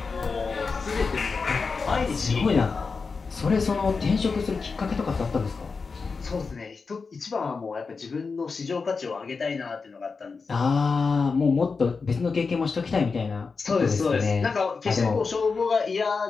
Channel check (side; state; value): right; quieter; 4.7 dB